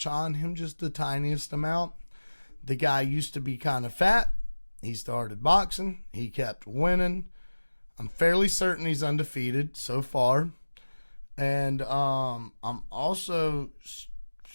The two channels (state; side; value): inverted; both; correlation -1.00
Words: on him, just the tiniest amount. The guy used to be kind of fat. He started boxing. He kept winning. I'm fairly certain he's undefeated so far. And if